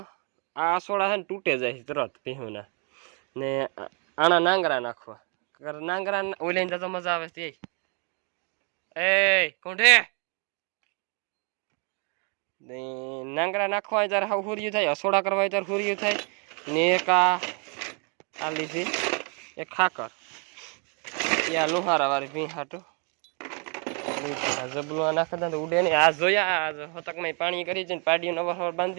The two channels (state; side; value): quieter; left; 37.3 dB